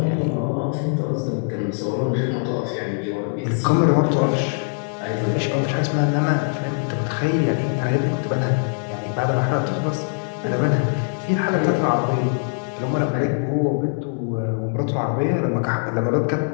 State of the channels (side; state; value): right; silent; digital silence